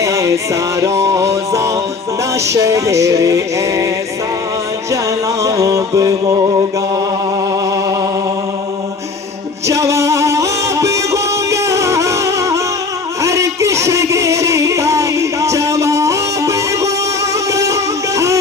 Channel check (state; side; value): quieter; right; 4.2 dB